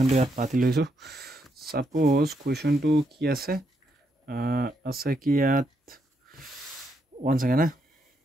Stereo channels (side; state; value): both; normal; correlation 0.78